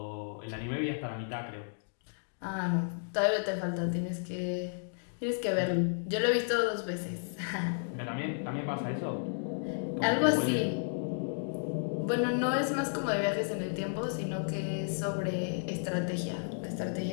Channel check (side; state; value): right; silent; digital silence